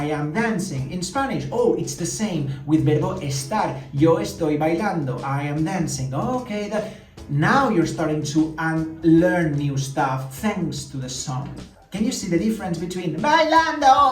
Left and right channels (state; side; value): identical; both; correlation 1.00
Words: am dancing. In Spanish, oh, it's the same with verbo estar. Yo estoy bailando. I am dancing. Okay, now you're starting to learn new stuff thanks to the song. Can you see the difference between